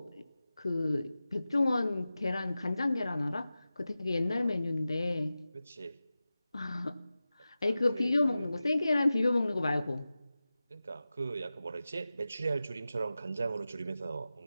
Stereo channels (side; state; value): both; inverted; correlation -0.94